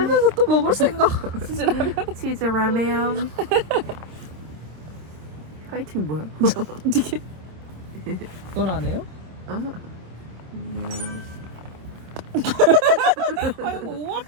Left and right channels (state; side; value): late; left; 26 ms